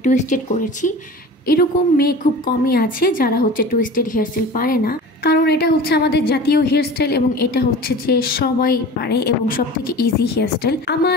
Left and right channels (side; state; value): both; normal; correlation 0.37